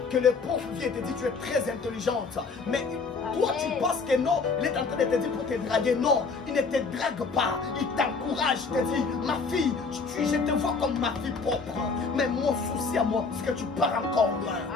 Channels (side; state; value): right; quieter; 4.6 dB